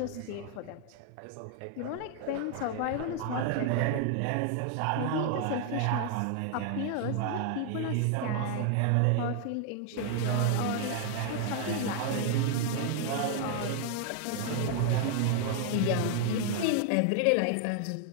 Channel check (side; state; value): both; different; correlation 0.00